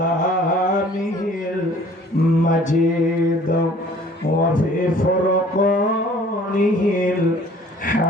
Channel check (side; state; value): both; normal; correlation 0.53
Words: المجيد وفي فرقانه